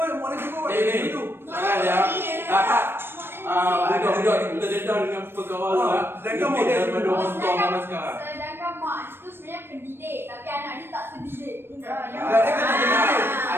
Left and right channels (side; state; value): left; late; 0.11 ms